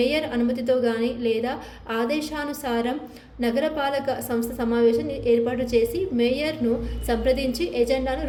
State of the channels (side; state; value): both; identical; correlation 1.00